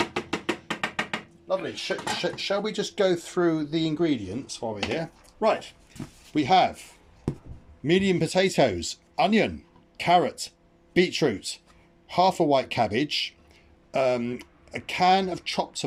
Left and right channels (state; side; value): identical; both; correlation 1.00